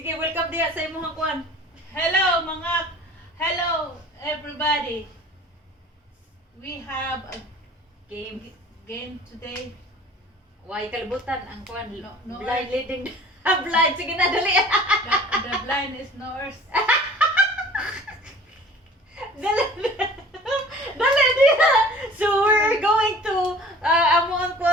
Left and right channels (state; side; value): normal; both; correlation 0.47